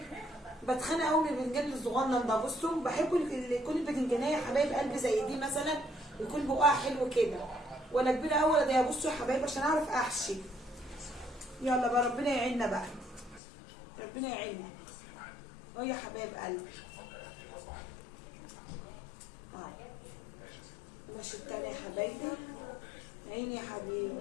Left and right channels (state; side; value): drops out; right; at 13.4 s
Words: بتخانق قوي من الباذنجان الصغنن ده. بصوا بحب يكون الباذنجانيه يا حبايب قلبي زي دي مثلا، يكون بقها حلو كده، ولا كبيره قوي ولا ضيقه. بصوا يا حبايبي عشان اعرف احشي. يلا بقى ربنا يعيننا بقى، ربنا يعيننا اهو يا حبايب قلبي. ماشي التاني يا حبايبي. عيني يا حبيبي.